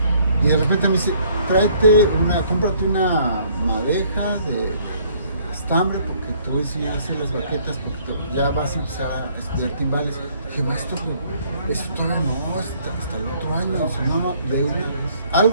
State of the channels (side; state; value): both; inverted; correlation -0.62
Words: Y de repente me dice, cómprate una madeja de estambre, porque te voy a enseñar a hacer las baquetas, porque ya vas a empezar a estudiar timbales. Dije, maestro, pero eso todavía no, hasta el otro año. Dice, no, de una vez.